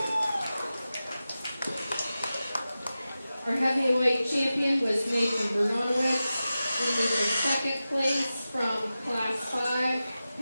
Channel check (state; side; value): inverted; both; correlation -0.94